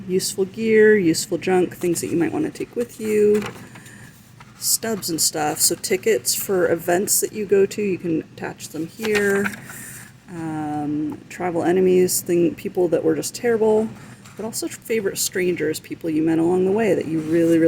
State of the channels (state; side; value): identical; both; correlation 1.00